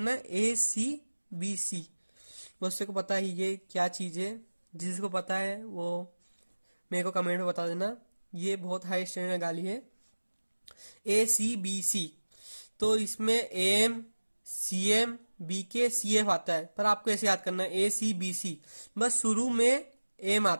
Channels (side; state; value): both; inverted; correlation -1.00